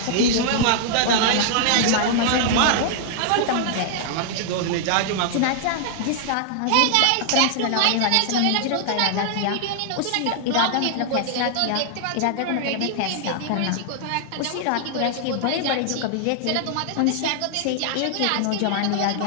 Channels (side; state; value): both; different; correlation -0.01